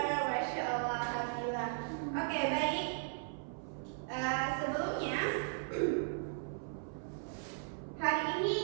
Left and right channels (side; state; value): left; silent; 53 dB below the other